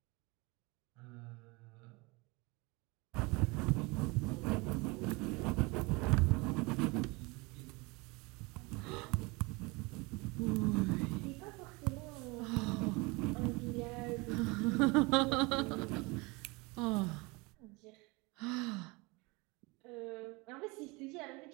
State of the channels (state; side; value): quieter; left; 26.1 dB